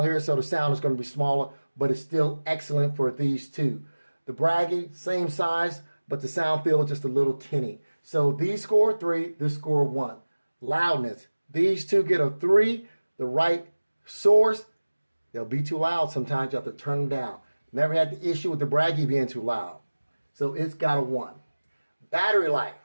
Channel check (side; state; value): both; inverted; correlation -1.00